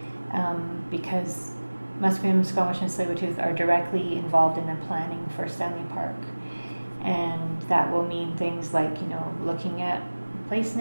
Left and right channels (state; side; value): inverted; both; correlation -1.00